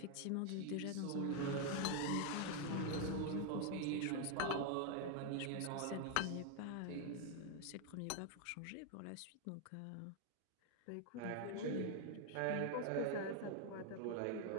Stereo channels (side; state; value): both; different; correlation 0.01